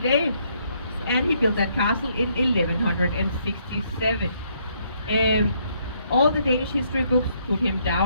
and he built that castle in 1167. All the Danish history books put him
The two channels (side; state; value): both; inverted; correlation -0.71